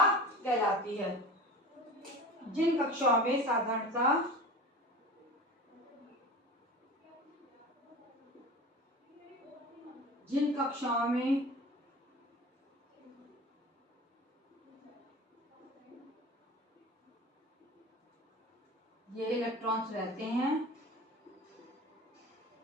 कहलाती है। जिन कक्षाओं में साधारणतः ये इलेक्ट्रॉन्स रहते हैं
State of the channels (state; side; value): normal; both; correlation 0.35